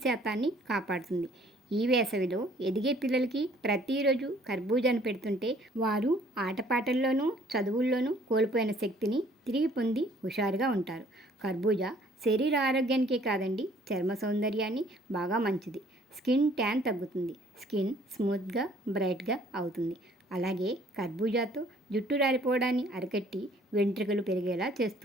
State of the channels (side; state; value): both; normal; correlation 0.59